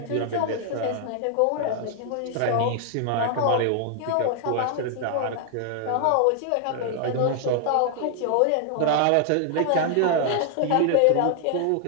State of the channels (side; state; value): both; different; correlation 0.00